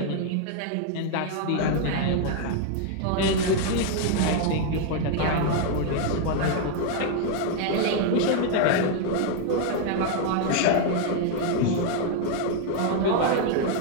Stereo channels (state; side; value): different; both; correlation 0.00